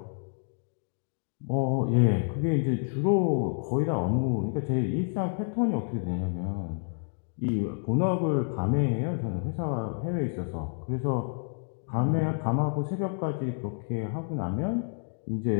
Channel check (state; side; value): silent; right; 59 dB below the other